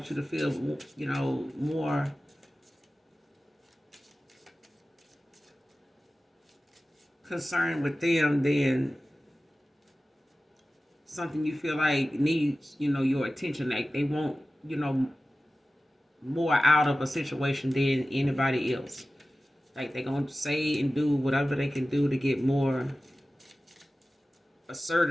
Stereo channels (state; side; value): normal; both; correlation 0.95